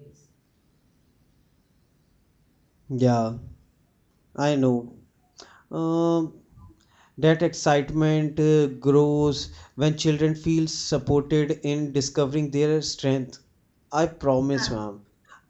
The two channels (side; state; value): both; identical; correlation 1.00